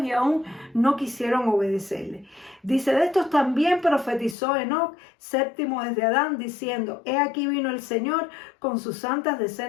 y aún no quisieron obedecerle. Dice, de estos también profetizó Enoc, séptimo desde Adán, diciendo, he aquí vino el Señor con sus santas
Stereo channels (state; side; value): drops out; right; at 4.4 s